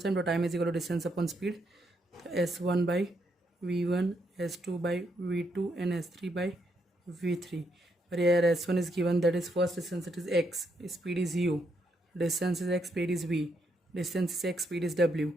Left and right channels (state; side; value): normal; both; correlation 0.77